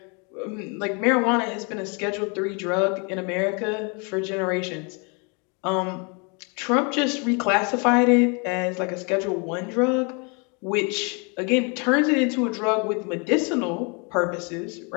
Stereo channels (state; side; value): quieter; right; 33.4 dB